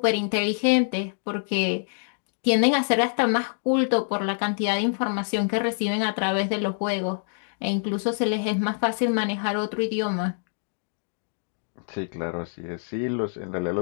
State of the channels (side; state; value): right; silent; 61 dB below the other